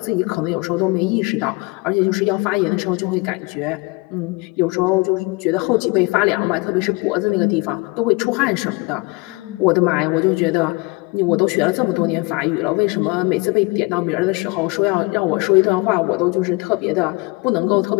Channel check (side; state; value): right; quieter; 26.1 dB